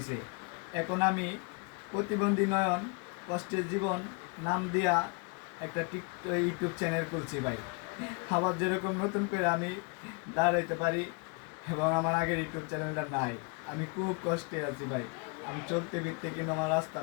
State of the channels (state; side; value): quieter; right; 32.0 dB